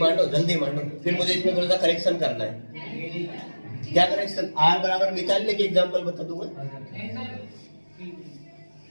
जल्दी मांडो। फिर मुझे इसमें थोड़ा सा करेक्शन करना है। क्या करेक्शन, R बराबर निकालने के एग्जाम्पल बता दूंगा।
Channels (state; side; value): inverted; both; correlation -1.00